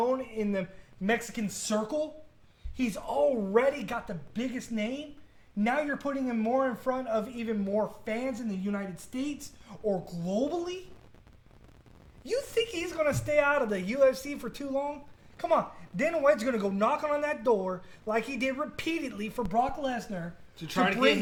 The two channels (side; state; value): both; identical; correlation 1.00